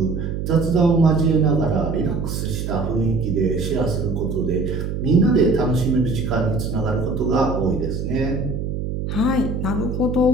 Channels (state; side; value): noise; right; hum, 4 dB below the sound